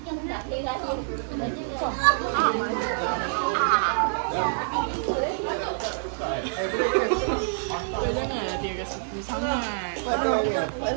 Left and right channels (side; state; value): left; silent; digital silence